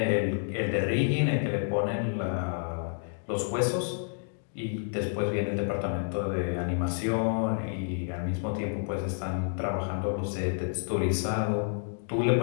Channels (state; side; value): silent; right; digital silence